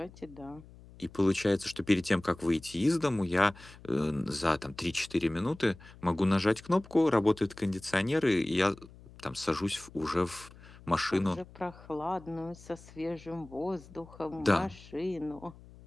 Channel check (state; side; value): noise; left; hum, 21 dB below the sound